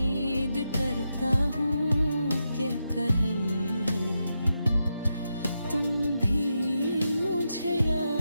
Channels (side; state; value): both; inverted; correlation -0.86